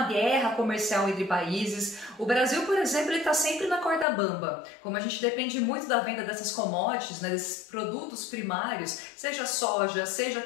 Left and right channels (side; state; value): right; drops out; at 4.0 s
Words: guerra comercial entre países. O Brasil, por exemplo, ele está sempre na corda bamba. Como a gente depende muito da venda dessas commodities, né, desses produtos primários, seja soja, seja